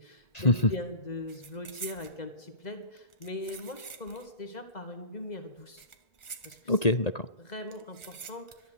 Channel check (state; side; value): late; right; 1.4 ms